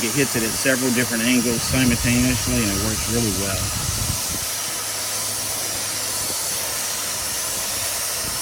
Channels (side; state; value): both; identical; correlation 1.00